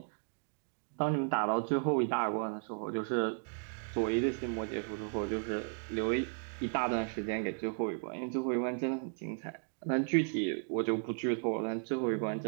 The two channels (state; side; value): silent; left; 55 dB below the other